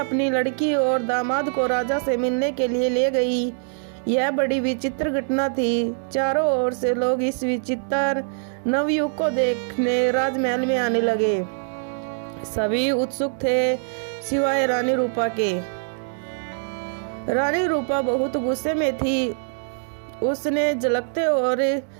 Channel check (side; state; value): left; silent; digital silence